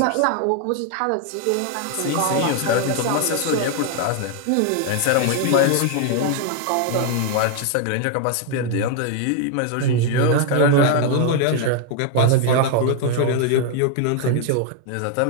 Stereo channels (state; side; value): different; both; correlation 0.00